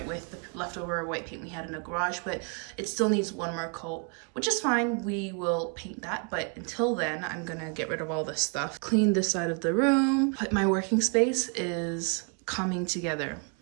with the leftover white paint we had in the garage, but it still needs one more coat, which is fine. We will paint that, but until then, I'm gonna get rid of all this stuff. Clean this side of the room. But my working space is coming together.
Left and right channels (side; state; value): left; quieter; 37.1 dB